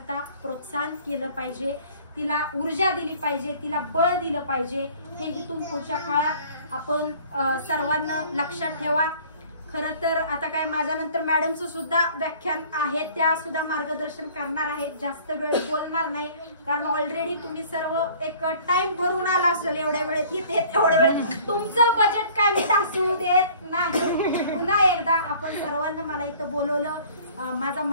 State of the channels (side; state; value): both; inverted; correlation -0.51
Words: प्रोत्साहन केलं पाहिजे, तिला ऊर्जा दिली पाहिजे, तिला बळ दिलं पाहिजे. हे इथून पुढच्या काळात आपण सर्वांना लक्षात ठेवा. खरं तर आता काय माझ्यानंतर मॅडमचं सुद्धा व्याख्यान आहे, त्या सुद्धा मार्गदर्शन करणार आहेत. जास्त वेळ बोलणार नाही कारण ऑलरेडी तुम्ही सर्व एक टाइम भरून आला असेल. एवढ्या वेळेत इथे तेवढ्या वेळेत तुमचं बजेट काय मी ढासू देत नाही. पुन्हा एकदा आपण सर्वांना मला इथं बोलवलं, माझा